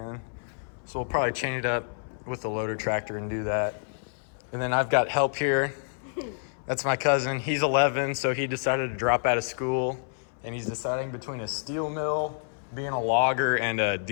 So we'll probably chain it up with the loader tractor and do that. And then I've got help here. That's my cousin. He's 11, so he decided to drop out of school, and he's deciding between a steel mill, being a logger, and a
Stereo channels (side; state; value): right; silent; 59 dB below the other